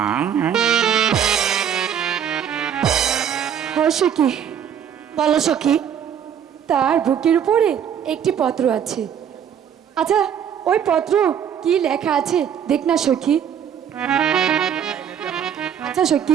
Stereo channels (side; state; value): left; quieter; 8.7 dB